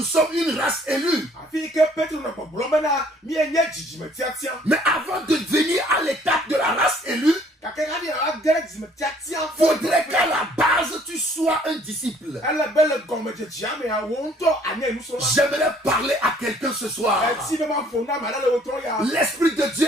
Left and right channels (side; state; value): both; normal; correlation 0.59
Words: sommes une race élue. Mais avant de venir à l'étape de la race élue, Faudrait qu'à la base, tu sois un disciple. J'aimerais parler à quelqu'un ce soir. L'Esprit de Dieu